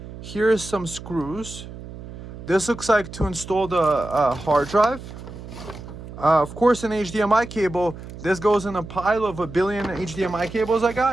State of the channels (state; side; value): noise; right; hum, 13 dB below the sound